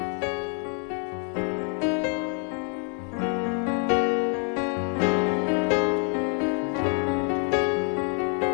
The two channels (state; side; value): quieter; right; 39.0 dB